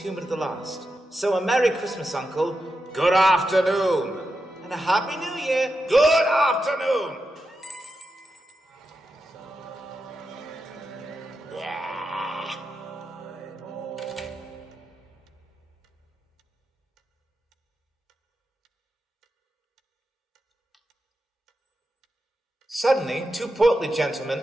to the last. So a Merry Christmas, Uncle. Good afternoon. And a Happy New Year. Good afternoon. Suddenly, two portly gentlemen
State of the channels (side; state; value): both; normal; correlation 0.88